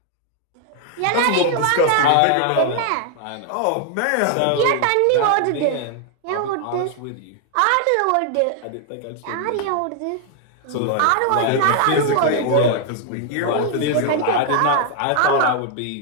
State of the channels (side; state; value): both; different; correlation 0.00